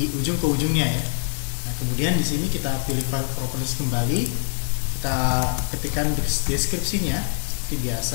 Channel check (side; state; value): right; silent; digital silence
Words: ujung ke ujungnya ya. Nah, kemudian di sini kita pilih file properties kembali, kita ketikkan deskripsinya seperti